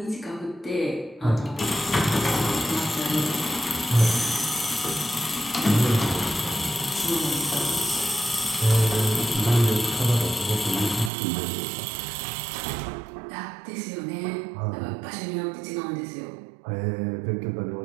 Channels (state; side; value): drops out; left; at 11.1 s